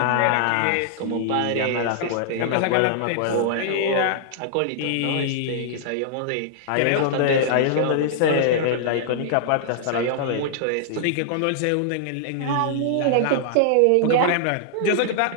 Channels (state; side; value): different; both; correlation -0.01